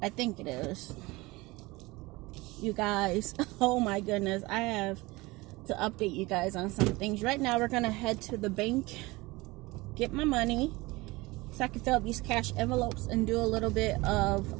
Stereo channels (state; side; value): quieter; left; 22.1 dB